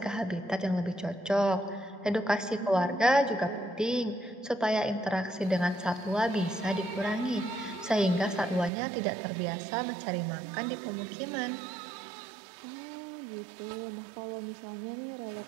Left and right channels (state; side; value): drops out; left; at 8.7 s